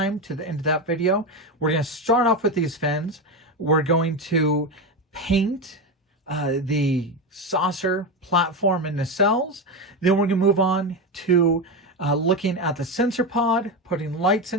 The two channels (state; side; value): normal; both; correlation 0.15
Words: to the end of that video. We're going to start off with these fins. We're going to paint the saucer, platform, and nacelles. Then we're going to move on to looking at the sensor pod, putting lights